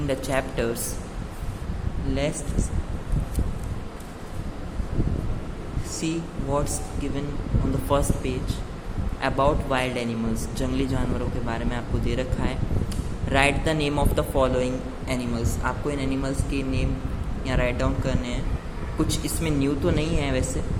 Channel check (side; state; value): both; identical; correlation 1.00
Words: the chapters, let's see what's given on the first page about wild animals. जंगली जानवरों के बारे में आपको दे रखा है. Right the name of the following animals. आपको इन animals के नेम यहाँ राइट डाउन करने हैं. कुछ इसमें न्यू तो नहीं है वैसे.